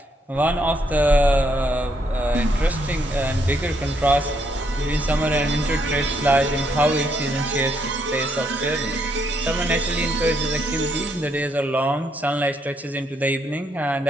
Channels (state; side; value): normal; both; correlation 0.74